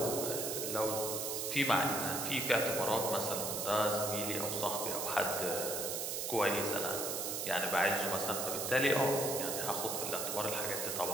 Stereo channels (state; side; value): noise; right; hiss, 2 dB below the sound